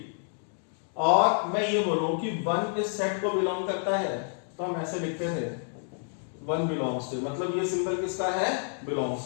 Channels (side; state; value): right; silent; 59 dB below the other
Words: और मैं ये बोलूं कि 1 इस सेट को बिलोंग करता है, तो हम ऐसे लिखते थे 1 बिलोंग्स टू। मतलब ये सिंबल किसका है,